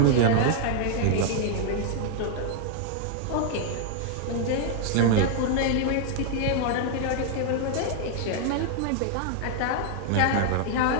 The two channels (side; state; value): both; different; correlation 0.00